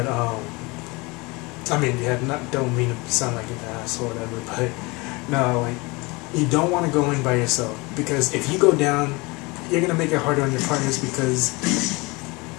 I mean, yeah, don't mean to sound like an ass or whatever. But no, like, you don't want to go in by yourself because if you go down, you're gonna make it harder on your partners because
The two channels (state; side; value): quieter; right; 25.5 dB